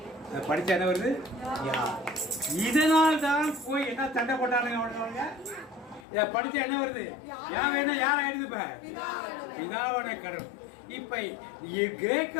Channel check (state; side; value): drops out; right; at 6.1 s